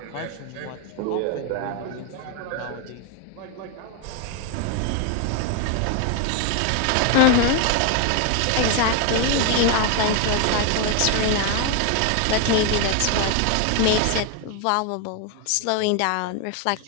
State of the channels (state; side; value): different; both; correlation 0.01